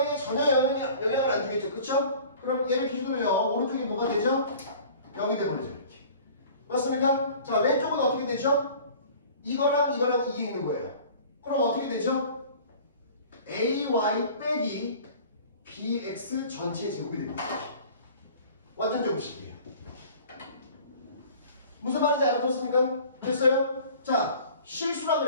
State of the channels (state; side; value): inverted; both; correlation -0.46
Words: 전혀 영향을 안 주겠죠. 그쵸? 그럼 얘를 기준으로요. 오른쪽이 뭐가 되죠? 0이 되버리죠. 이렇게. 맞습니까? 자, 왼쪽은 어떻게 되죠? 이거랑 이게 있는 거예요. 그럼 어떻게 되죠? ay 빼기 bx 전체 제곱이 됩니다. 완전 제곱식이에요. 무슨 말인지 알아들었습니까? 됐어요? 자, 실수라